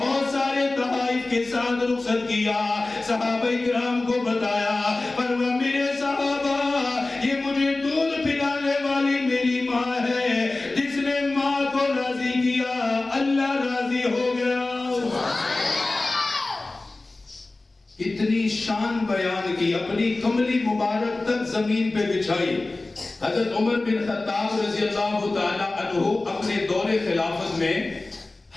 سارے تحائف کے ساتھ رخصت کیا، صحابہ کرام کو بتایا، فرمایا میرے صحابہ یہ مجھے دودھ پلانے والی میری ماں ہے، جس نے ماں کو راضی کیا اللہ راضی ہو گیا۔ اتنی شان بیان کی، اپنی کملی مبارک تک زمین پہ بچھائی۔ حضرت عمر بن خطاب رضی اللہ تعالی عنہ اپنے دور خلافت میں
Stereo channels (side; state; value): right; quieter; 3.1 dB